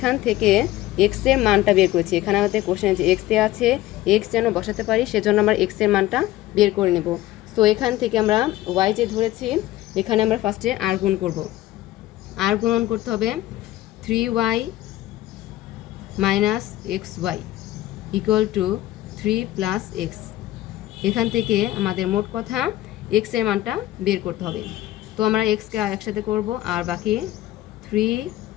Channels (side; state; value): right; quieter; 15.5 dB